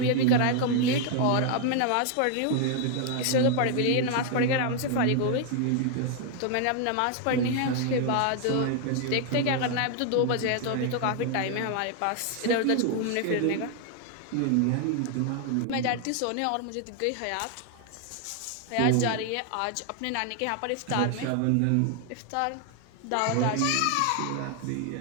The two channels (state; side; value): different; both; correlation 0.00